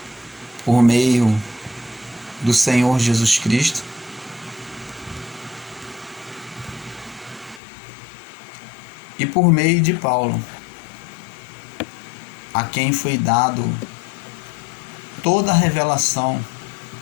por meio do Senhor Jesus Cristo, e por meio de Paulo, a quem foi dado toda a revelação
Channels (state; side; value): drops out; right; at 7.6 s